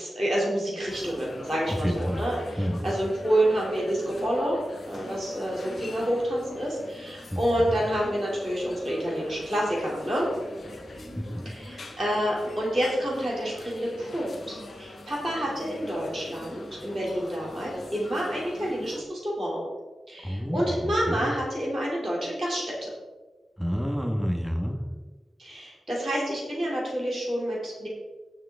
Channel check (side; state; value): both; normal; correlation 0.92